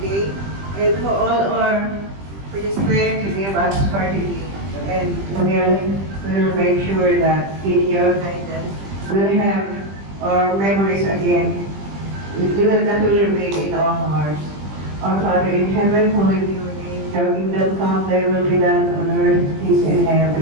and for the strength you gave us for today. And we'll make sure that in your guidance, we'll have our memories again. That will remain in our hearts. Our Father in heaven, holy be your name. Your kingdom come, thy will be done on earth as in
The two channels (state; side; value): late; left; 20 ms